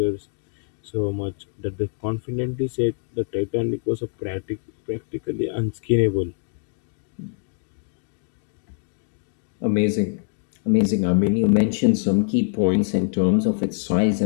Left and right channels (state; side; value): silent; right; 63 dB below the other